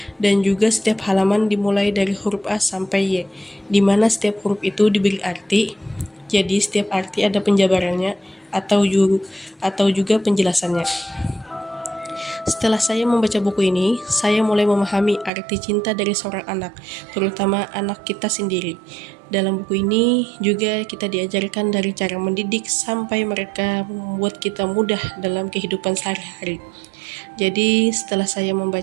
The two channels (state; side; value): drops out; left; at 15.3 s